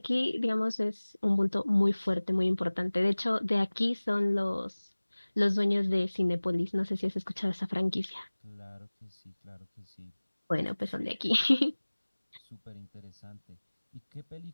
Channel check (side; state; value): both; inverted; correlation -1.00